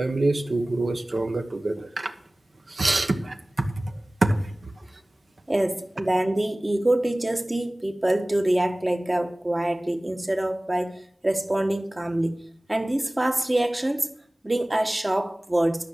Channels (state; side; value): normal; both; correlation 0.98